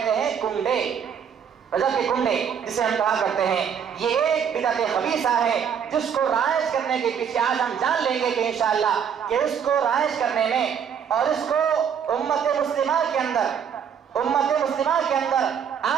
ہیں کنڈے، رجب کے کنڈے جسے ہم کہا کرتے ہیں۔ یہ ایک بدعت خبیثہ ہے جس کو رائج کرنے کے پیچھے آج ہم جان لیں گے کہ انشاءاللہ کہ اس کو رائج کرنے میں اور اس کو امت مسلمہ کے اندر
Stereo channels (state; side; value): quieter; left; 7.7 dB